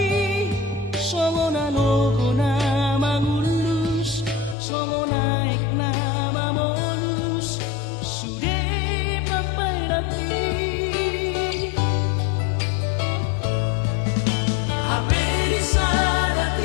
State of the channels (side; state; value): right; drops out; at 4.5 s